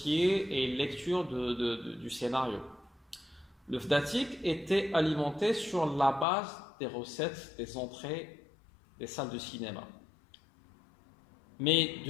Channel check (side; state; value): right; drops out; at 6.2 s